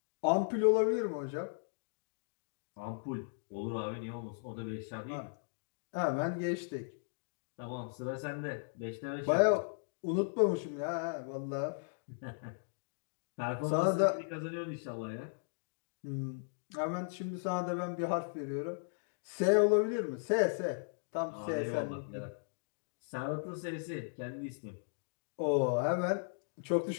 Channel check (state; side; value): silent; right; digital silence